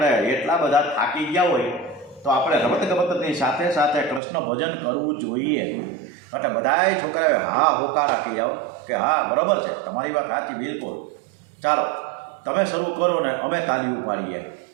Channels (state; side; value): drops out; left; at 4.2 s